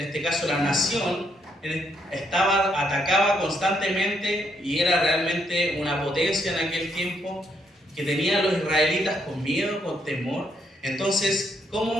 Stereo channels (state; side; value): normal; both; correlation 0.74